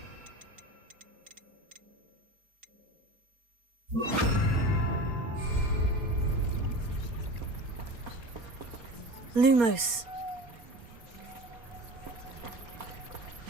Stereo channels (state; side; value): late; left; 4.2 ms